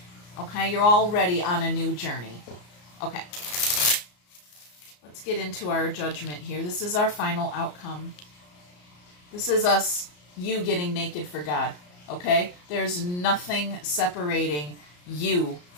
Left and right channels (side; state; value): right; late; 34 ms